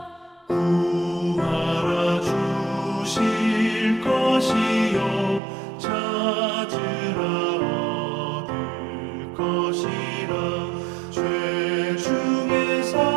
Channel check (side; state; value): left; drops out; at 5.4 s